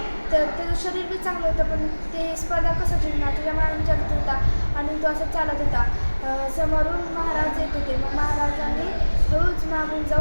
त्याचं शरीर बी चांगलं होतं, पण ते स्पर्धा कसं जिंकणार त्याच्या मनात विचार होता. आणि तो असं चालत होता. समोरून महाराज येत होते. मग महाराजांनी रोज मागून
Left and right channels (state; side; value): inverted; both; correlation -1.00